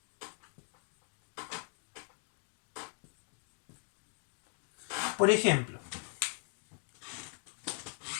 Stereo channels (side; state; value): right; silent; 52 dB below the other